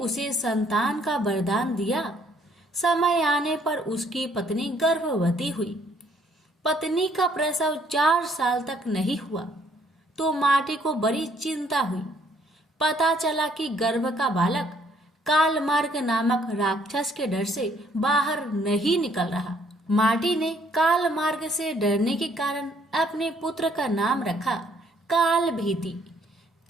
संतान का वरदान दिया। समय आने पर उसकी पत्नी गर्भवती हुई। पत्नी का प्रसव 4 साल तक नहीं हुआ तो माटी को बड़ी चिंता हुई। पता चला कि गर्भ का बालक कालमार्ग नामक राक्षस के डर से बाहर नहीं निकल रहा। माटी ने कालमार्ग से डरने के कारण अपने पुत्र का नाम रखा कालभीति।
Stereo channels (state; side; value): normal; both; correlation 0.65